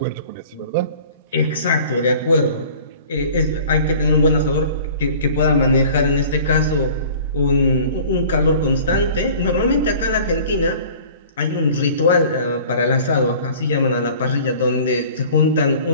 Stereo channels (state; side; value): inverted; both; correlation -0.46